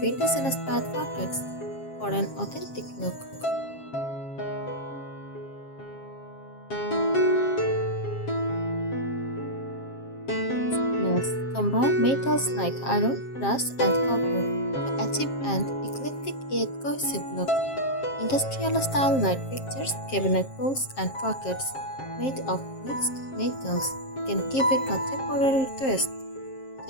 pockets for an authentic look. Nails. Combine metals like iron, brass, and copper to achieve an eclectic yet cohesive look. Industrial-style light fixtures, cabinet pulls, and pockets made of mixed metals can give a contemporary twist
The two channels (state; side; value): late; right; 7.5 ms